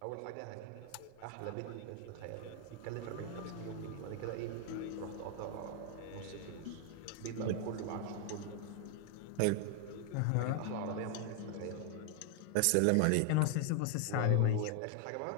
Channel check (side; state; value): both; different; correlation 0.00